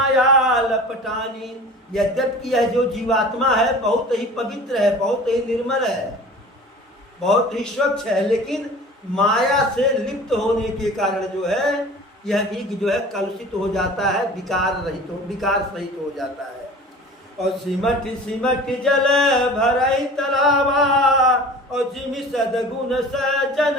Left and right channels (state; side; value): normal; both; correlation 0.41